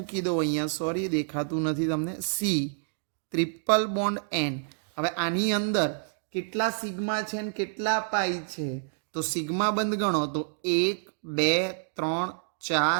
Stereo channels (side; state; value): left; silent; digital silence